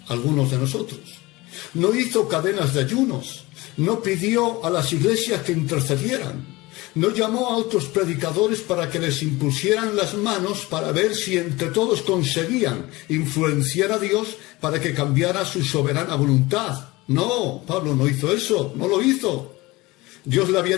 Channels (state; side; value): quieter; right; 21.3 dB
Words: algunos de nosotros. No hizo cadenas de ayunos. No pidió a las iglesias que intercedieran. No llamó a otros predicadores para que les impusieran las manos para ver si entre todos conseguían influenciar a Dios para que cambiara su soberana voluntad. No, Pablo no hizo eso, no lo hizo. Dios le había